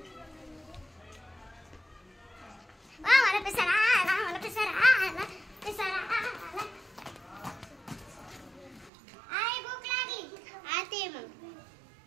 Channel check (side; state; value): left; drops out; at 8.9 s